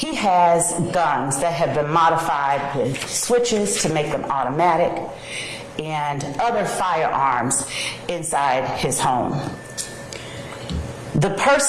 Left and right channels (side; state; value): both; identical; correlation 1.00